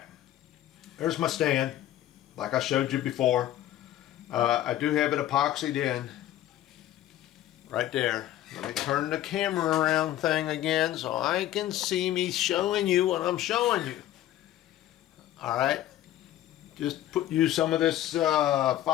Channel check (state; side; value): quieter; right; 13.1 dB